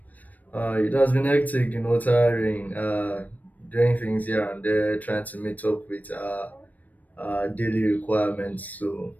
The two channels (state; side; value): late; right; 0.079 ms